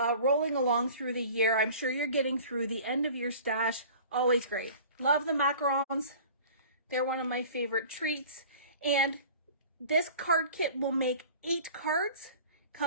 along through the year? I'm sure you're getting through the end of your stash. Always great. Love the macarons. They're one of my favorite treats. And this card kit will make 8 cards.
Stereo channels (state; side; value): inverted; both; correlation -0.44